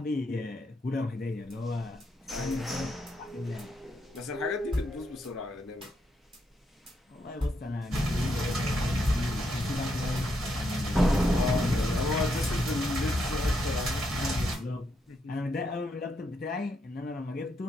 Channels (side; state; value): both; normal; correlation 0.79